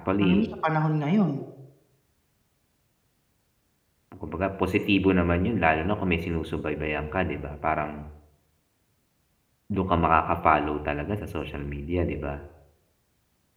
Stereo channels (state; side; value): identical; both; correlation 1.00